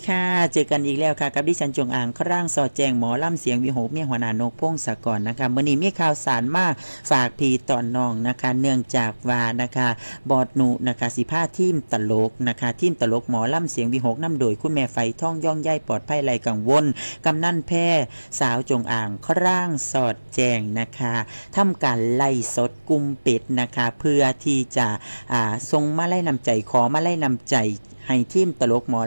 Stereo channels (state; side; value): inverted; both; correlation -1.00